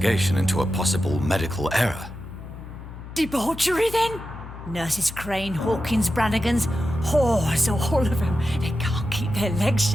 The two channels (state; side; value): noise; left; hum, 13 dB below the sound